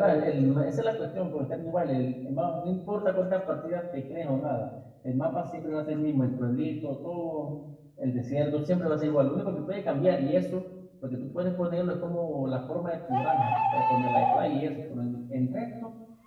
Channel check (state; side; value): identical; both; correlation 1.00